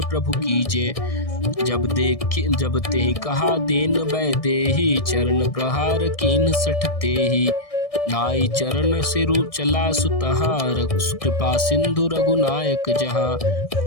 प्रभु कीजे। जब ते कहा देन बै देहि, चरण प्रहार कीन 60 तेहि। नाई चरण सिरु चला सुतहाँ, कृपा सिंधु रघुनायक जहाँ।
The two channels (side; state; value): right; late; 1.6 ms